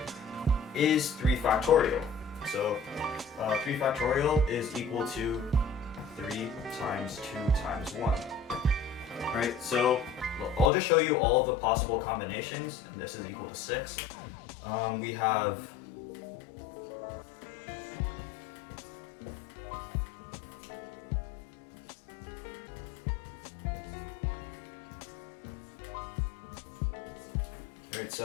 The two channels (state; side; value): drops out; right; at 10.7 s